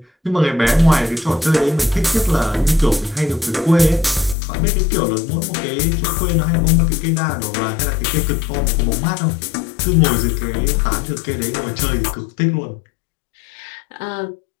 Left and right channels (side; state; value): right; drops out; at 4.4 s